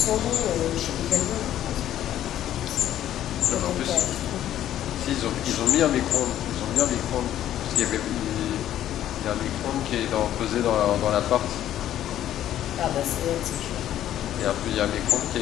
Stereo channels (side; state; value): right; quieter; 11.9 dB